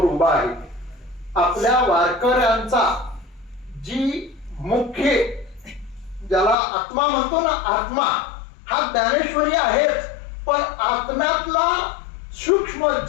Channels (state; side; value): drops out; right; at 6.6 s